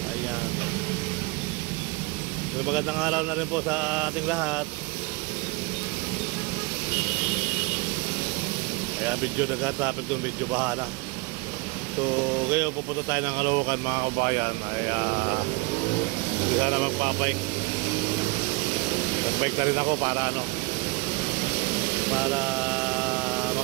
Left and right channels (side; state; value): left; quieter; 25.5 dB